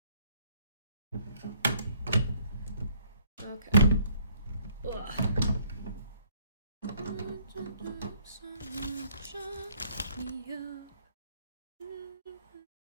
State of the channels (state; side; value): inverted; both; correlation -0.62